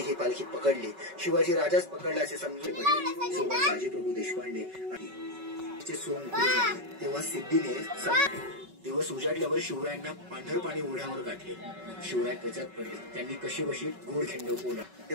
पालखी पकडली। शिवाजी राजाच पकडला असे समजून पडले। सोबत बाजीप्रभू देशपांडे आणि सोंग तेव्हा सिद्धीने दिवस उजाडल्यावर शिवरायांना पांढरपाणी ओढ्यावर गाठले। शिवराय त्याच्यात पडले। त्यांनी कशी बशी गोड खिंड बोला ते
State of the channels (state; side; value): late; left; 5.3 ms